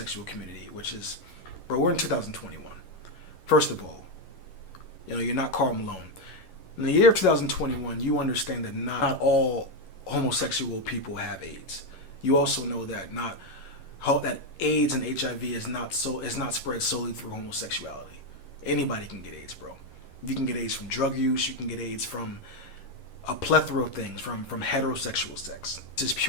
community, which is, bro, we're in 2021. First of all, you're not Karl Malone. In the year of 2021, you understand that not all homosexual people have AIDS. You also know that AIDS and HIV is not spread solely through homosexuality. Anybody can get AIDS, bro. You can get AIDS from drug use. You can get AIDS from a plethora of things, from heterosexual sex. This is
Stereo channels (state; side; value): late; right; 11 ms